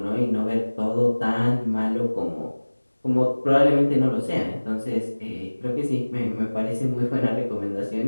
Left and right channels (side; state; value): both; inverted; correlation -1.00